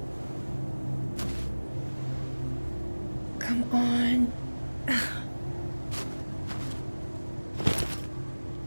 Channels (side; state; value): both; inverted; correlation -1.00